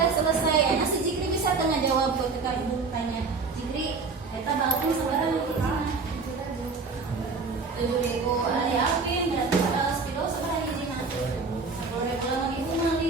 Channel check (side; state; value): left; quieter; 4.4 dB